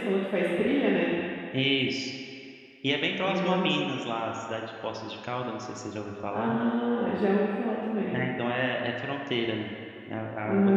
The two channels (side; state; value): both; identical; correlation 1.00